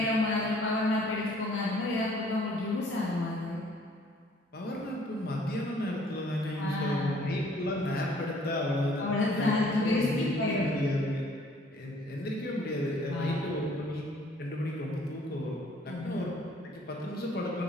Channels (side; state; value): both; normal; correlation 0.58